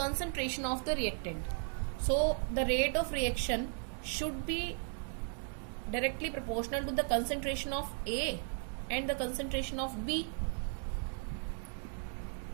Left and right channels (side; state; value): left; silent; 54 dB below the other